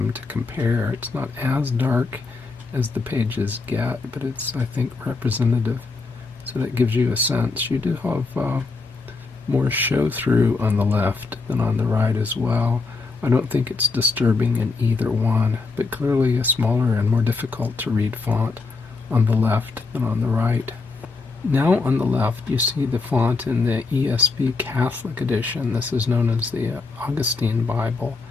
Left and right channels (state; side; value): quieter; right; 4.0 dB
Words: to compare. It's not as dark as the pages get, but it's, I think, representative. So that gives you a sense. You do have more show-through on the left than on the right as well. I don't think it's disturbing in either one, but clearly a smaller and more difficult to read font on the left than on the right. Now on the left you see the font in the ESV Catholic edition. This is known as the Augustine Bible.